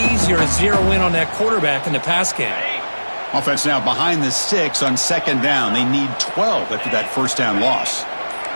to zero in on that quarterback in the pass game. Offense now behind the 6 on 2nd down. They need 12 after that first down loss.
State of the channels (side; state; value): both; inverted; correlation -1.00